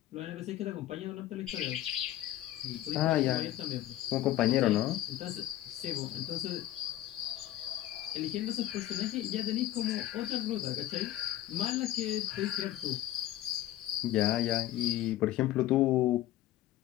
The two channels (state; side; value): quieter; right; 13.6 dB